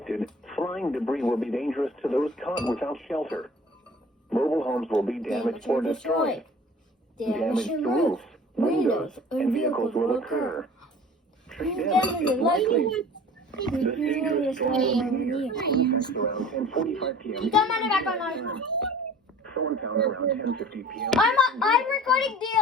Flying debris will be dangerous to those caught without shelter. Mobile homes will be damaged or destroyed. Damage to roofs, windows, and vehicles will occur. Tree damage is likely. This dangerous storm will be near around 10:45 p.m. Come on, back on. Thorntown around 10:50 p.m. I'm recording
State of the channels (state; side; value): normal; both; correlation 0.45